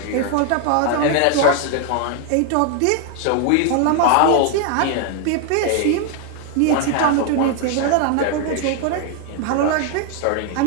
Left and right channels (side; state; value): both; different; correlation 0.00